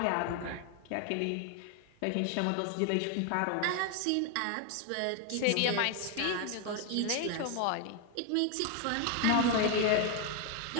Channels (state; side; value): different; both; correlation 0.00